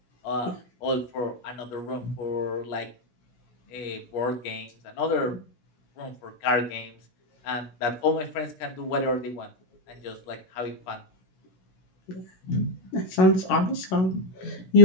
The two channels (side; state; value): right; late; 16 ms